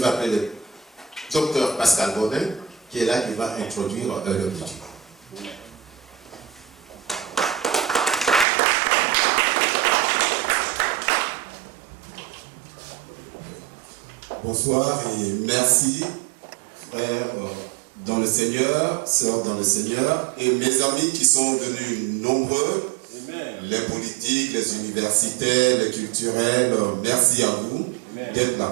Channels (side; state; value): left; drops out; at 8.5 s